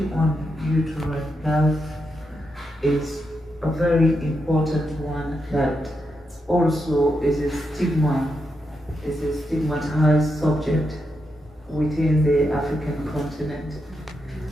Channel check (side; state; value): both; normal; correlation 0.84